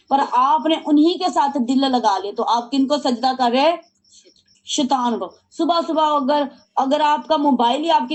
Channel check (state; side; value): identical; both; correlation 1.00